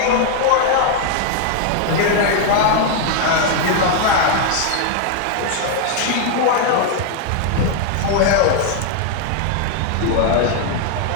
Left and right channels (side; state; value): both; different; correlation 0.00